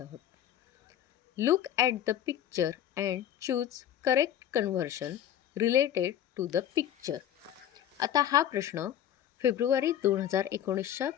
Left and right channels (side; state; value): right; quieter; 10.7 dB